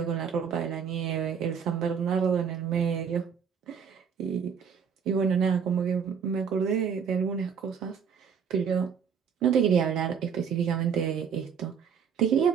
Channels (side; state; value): left; quieter; 7.0 dB